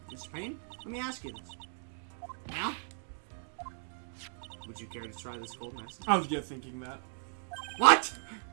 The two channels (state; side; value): silent; left; 54 dB below the other